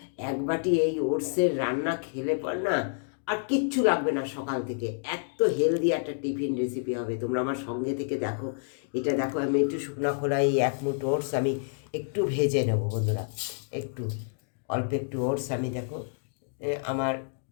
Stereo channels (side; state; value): right; silent; digital silence